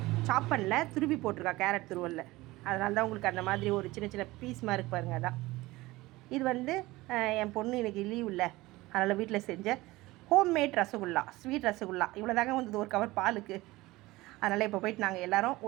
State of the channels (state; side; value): quieter; left; 19.6 dB